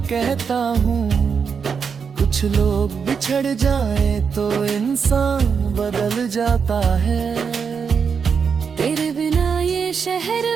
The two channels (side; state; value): left; quieter; 6.2 dB